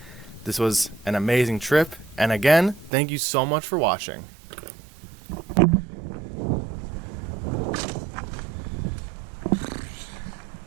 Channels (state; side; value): drops out; left; at 2.9 s